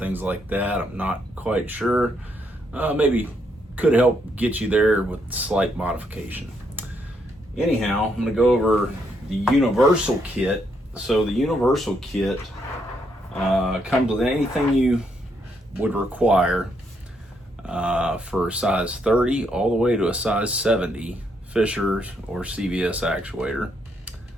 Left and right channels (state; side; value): normal; both; correlation 0.75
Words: like that. I'm not quite sure. Maybe could help get you there with slight modification. Anyhow, I'm going to go over the universal kit. So the universal kit comes with anything you would require for a size 30 all the way to a size 70 Fisher or CVS actuator.